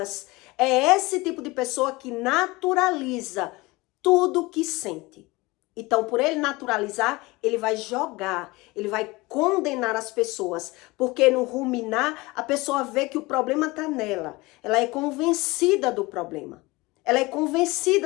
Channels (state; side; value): quieter; right; 22.4 dB